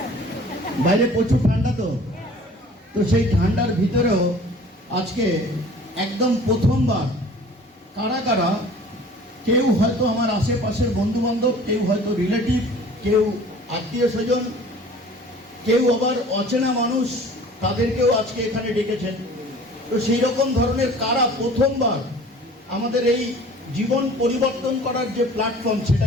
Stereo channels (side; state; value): both; normal; correlation 0.47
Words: বাইরে প্রচুর ঠান্ডা, তো সেই ঠান্ডার ভিতরেও আজকে একদম প্রথমবার কারা কারা, কেউ হয়তো আমার আশেপাশের বন্ধু বান্ধব, কেউ হয়তো রিলেটিভ, কেউ আত্মীয় স্বজন, কেউ আবার অচেনা মানুষ, তাদেরকেও আজকে এখানে ডেকেছেন। তো সেই রকম ধরনের কারা প্রথমবার আমাদের এই জীবন পরিবর্তন করার যে প্ল্যাটফর্ম,